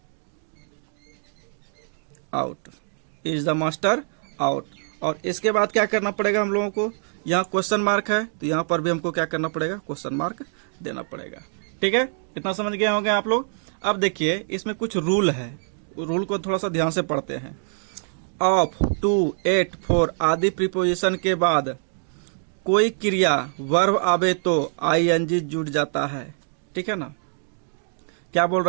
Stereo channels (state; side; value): silent; left; 61 dB below the other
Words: out, is the master out. और इसके बाद क्या करना पड़ेगा हम लोगों को, यहाँ क्वेश्चन मार्क है तो यहाँ पर भी हमको क्या करना पड़ेगा, क्वेश्चन मार्क देना पड़ेगा। ठीक है, इतना समझ गए होंगे आप लोग। अब देखिए इसमें कुछ रूल है, रूल को थोड़ा सा ध्यान से पढ़ते हैं। ऑफ, टू, एट, फॉर आदि प्रीपोजिशन के बाद कोई क्रिया वर्ब आवे तो आईएनजी जुड़ जाता है। ठीक है ना, क्या बोल